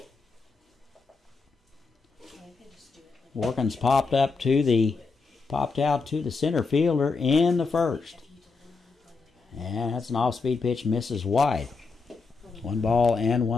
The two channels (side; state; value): right; quieter; 4.3 dB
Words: Warkins popped out to the center fielder in the first. And that's an off-speed pitch, misses wide. 1 ball and